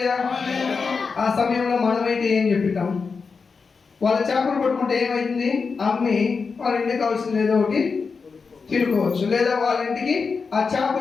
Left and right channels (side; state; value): right; quieter; 5.0 dB